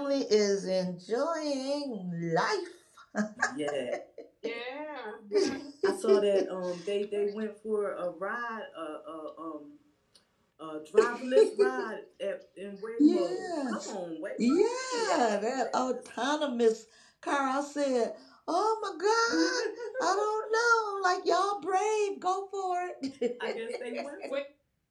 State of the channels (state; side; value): identical; both; correlation 1.00